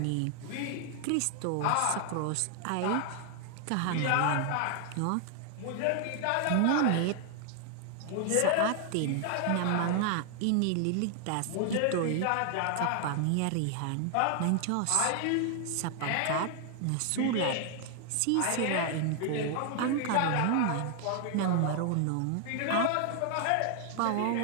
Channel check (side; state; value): both; different; correlation 0.00